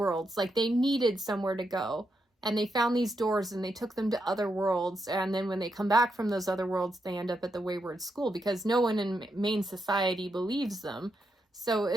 Like, they needed somewhere to go, and they found these doors and they took them to other worlds, and then when they come back from those other worlds, they end up at the Wayward School because no one in main society believes them. So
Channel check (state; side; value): normal; both; correlation 0.83